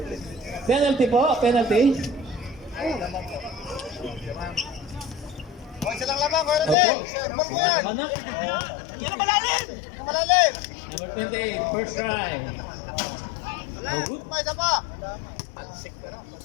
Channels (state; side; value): drops out; right; at 6.8 s